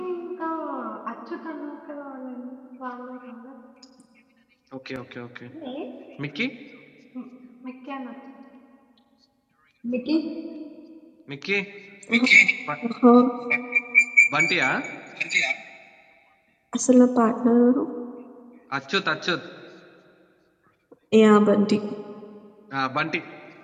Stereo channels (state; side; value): identical; both; correlation 1.00